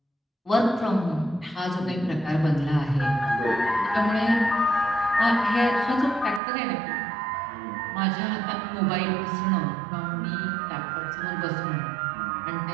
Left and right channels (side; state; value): left; drops out; at 6.4 s